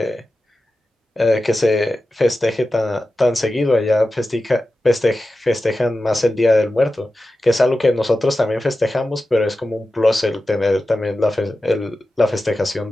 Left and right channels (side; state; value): both; normal; correlation 0.93